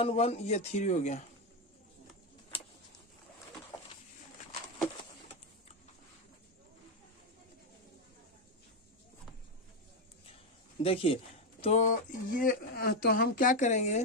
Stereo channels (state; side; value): normal; both; correlation 0.07